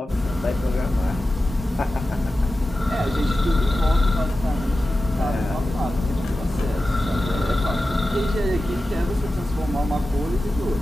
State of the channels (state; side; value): normal; both; correlation 0.93